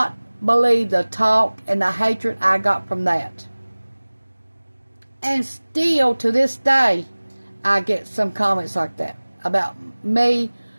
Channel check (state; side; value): inverted; both; correlation -1.00